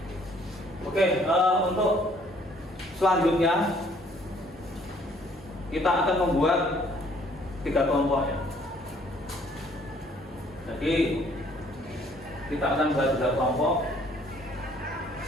Oke, untuk selanjutnya kita akan membuat 3 kelompok ya. Jadi kita akan buat 3 kelompok.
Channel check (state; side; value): normal; both; correlation 0.61